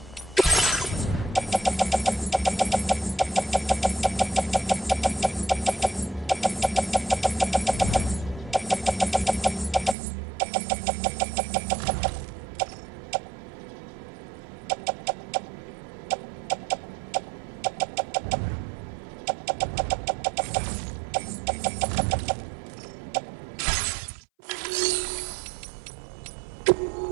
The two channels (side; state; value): left; drops out; at 10.0 s